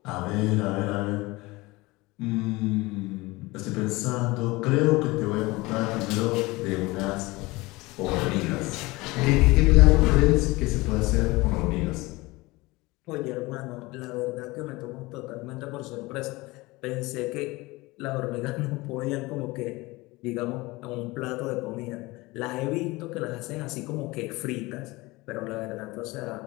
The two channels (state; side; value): quieter; right; 22.0 dB